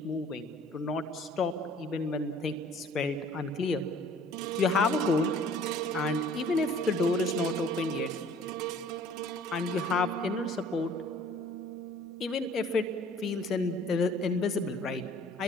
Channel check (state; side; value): normal; both; correlation 0.53